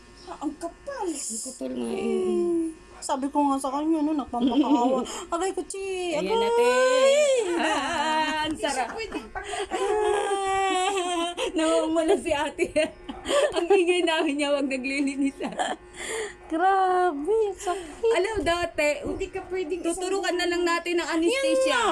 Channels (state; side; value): identical; both; correlation 1.00